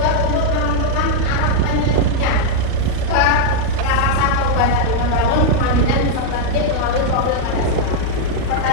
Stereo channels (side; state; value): both; different; correlation -0.01